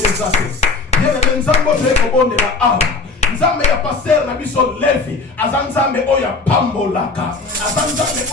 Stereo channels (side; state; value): right; quieter; 4.0 dB